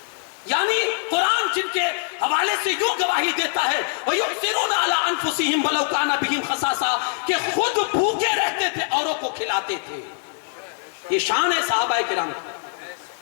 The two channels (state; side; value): silent; right; digital silence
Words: یعنی قرآن جن کے حوالے سے یوں گواہی دیتا ہے وَيُؤْثِرُونَ عَلَىٰ أَنفُسِهِمْ وَلَوْ كَانَ بِهِمْ خَصَاصَةٌ, کہ خود بھوکے رہتے تھے, اوروں کو کھلاتے تھے. یہ شان ہے صحابہ کرام.